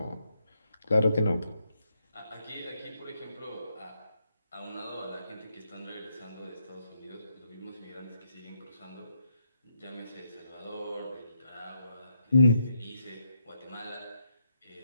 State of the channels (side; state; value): both; inverted; correlation -0.79